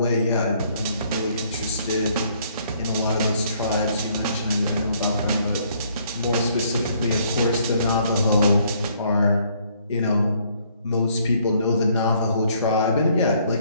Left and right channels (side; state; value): both; inverted; correlation -0.65